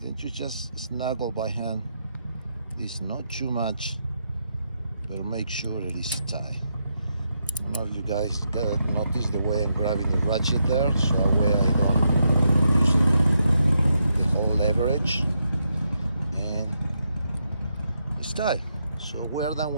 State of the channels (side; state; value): both; inverted; correlation -0.81